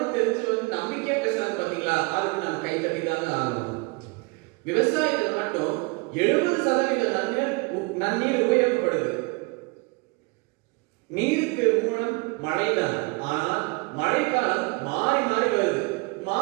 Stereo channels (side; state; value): left; quieter; 28.9 dB